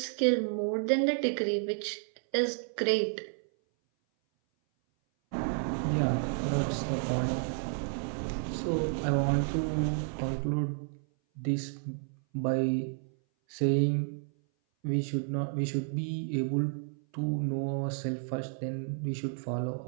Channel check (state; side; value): silent; left; 56 dB below the other